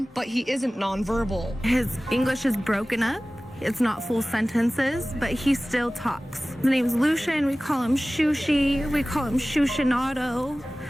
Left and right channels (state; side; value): normal; both; correlation 0.97